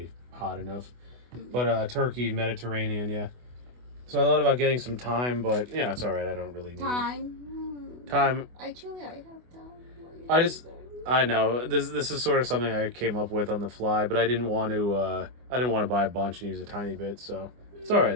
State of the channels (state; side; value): late; left; 24 ms